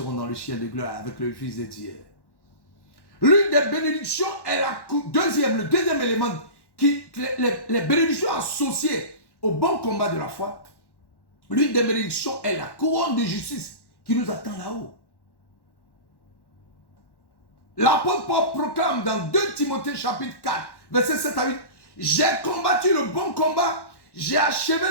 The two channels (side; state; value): right; late; 1.1 ms